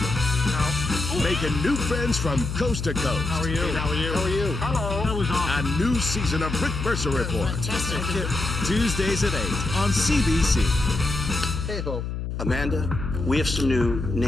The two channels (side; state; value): left; noise; hum, 4 dB below the sound